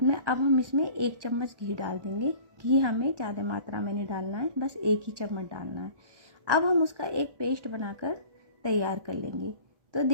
में अब हम इसमें 1 चम्मच घी डाल देंगे। घी हमें ज़्यादा मात्रा में नहीं डालना है, बस 1 ही चम्मच डालना है। अब हम उसका एक पेस्ट बनाकर तैयार कर लेंगे। तो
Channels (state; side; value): late; left; 1.1 ms